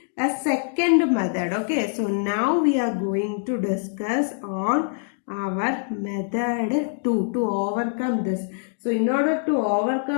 a second method. Okay, so now we are going to discuss on our method 2 to overcome this. So in order to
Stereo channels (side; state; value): right; silent; digital silence